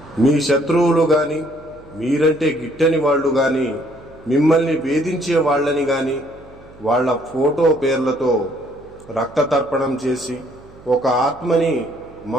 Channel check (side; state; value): right; noise; hum, 23 dB below the sound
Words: మీ శత్రువులు గాని, మీరంటే గిట్టని వాళ్ళు గాని, మిమ్మల్ని వేధించే వాళ్ళని గాని వాళ్ళ ఫోటో పేర్లతో రక్త తర్పణం చేసి ఒక ఆత్మని